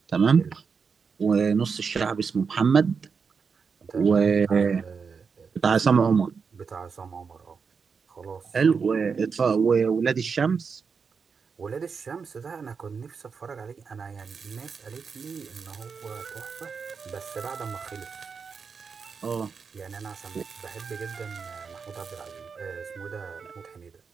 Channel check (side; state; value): left; quieter; 5.6 dB